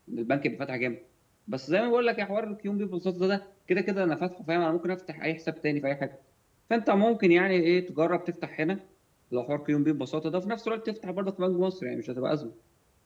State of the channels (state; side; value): identical; both; correlation 1.00